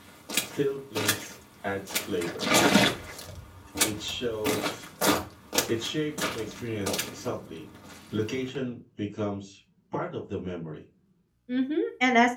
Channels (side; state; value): both; identical; correlation 1.00